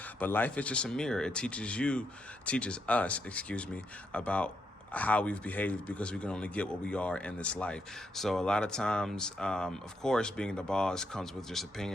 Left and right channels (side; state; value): both; normal; correlation 0.80